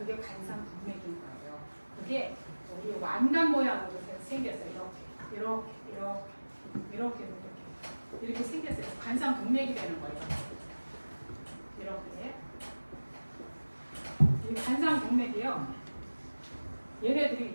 관상동맥인 거예요. 그게 우리 완간 모양으로 생겼어요. 이렇게 생겼어요. 관상동맥이 되는 거예요. 이렇게. 이 관상동맥이요. 얘네들이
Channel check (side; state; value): both; inverted; correlation -1.00